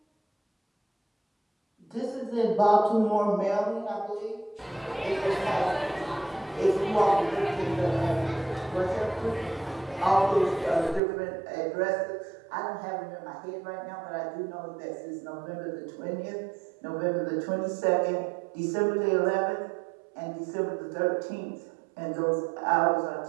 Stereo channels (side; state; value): left; drops out; at 11.0 s